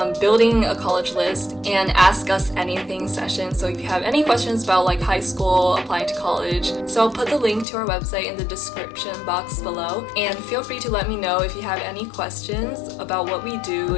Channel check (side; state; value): right; drops out; at 7.7 s